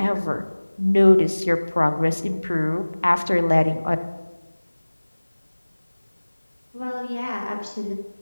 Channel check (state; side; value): inverted; both; correlation -1.00